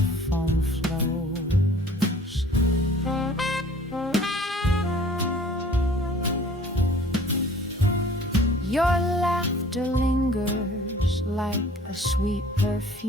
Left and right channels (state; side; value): normal; both; correlation 0.51